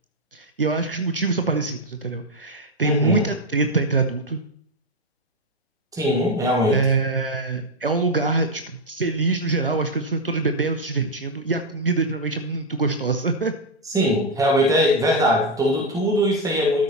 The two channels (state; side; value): normal; both; correlation 0.05